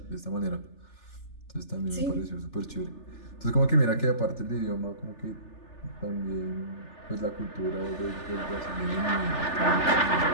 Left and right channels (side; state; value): right; late; 3.4 ms